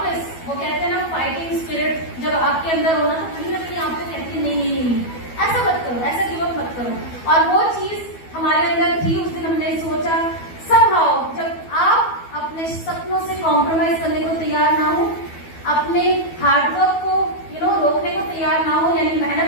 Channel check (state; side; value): late; right; 12 ms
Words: वो कहते हैं ना, फाइटिंग स्पिरिट जब आपके अंदर होना तो कहीं ना कहीं आपको कहती है नहीं, ऐसा मत करो, ऐसा गिव अप मत करो। और वो चीज हमारे अंदर थी। उस दिन हमने सोचा समहाउ, जब आप अपने सपनों से कॉम्प्रोमाइज करने को तैयार ना हो, अपने हार्डवर्क को रोकने को तैयार ना हो, यानी